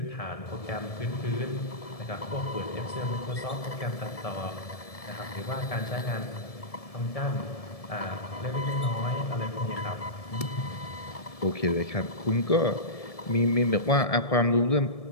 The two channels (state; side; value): late; right; 1.7 ms